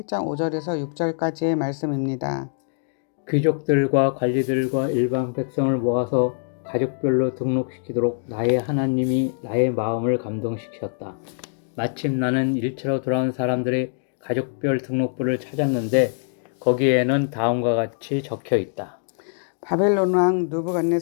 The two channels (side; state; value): right; silent; 63 dB below the other